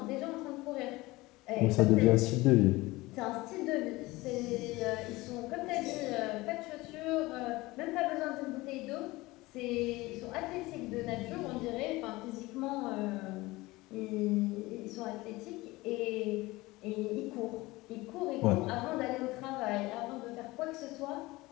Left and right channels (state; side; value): quieter; right; 20.6 dB